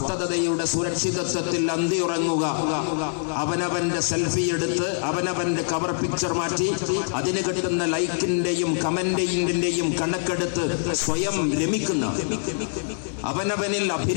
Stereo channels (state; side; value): silent; right; digital silence